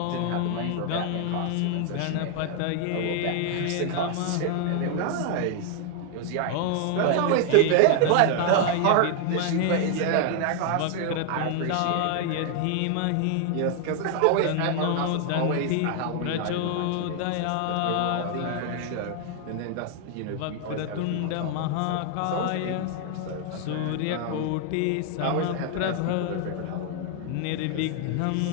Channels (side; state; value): both; different; correlation 0.00